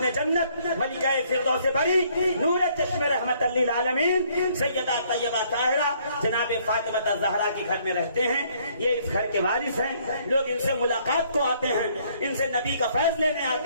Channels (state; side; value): inverted; both; correlation -0.65